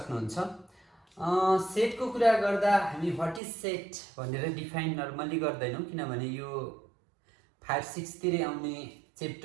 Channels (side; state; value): left; drops out; at 3.4 s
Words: सेट को कुरा गर्दा हामी व्हाट इज सेट भनेर डिफाइन नर्मली गर्दैनौं, किनभने यो 5, 6 तिरै आउने